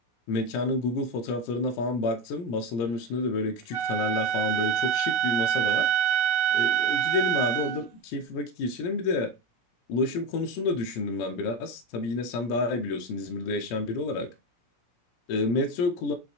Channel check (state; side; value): late; right; 17 ms